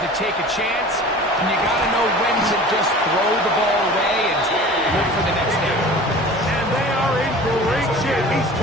to take a chance, and you got to know when to just throw the ball away and look for the next down. And they are in great shape. He's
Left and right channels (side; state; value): both; normal; correlation 0.41